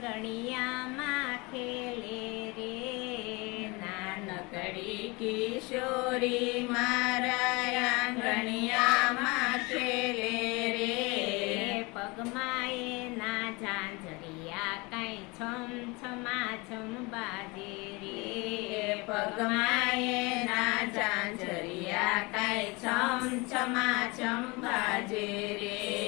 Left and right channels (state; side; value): quieter; right; 26.1 dB